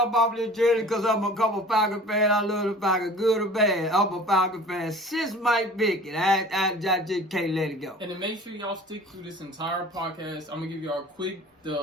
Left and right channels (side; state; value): both; normal; correlation 0.44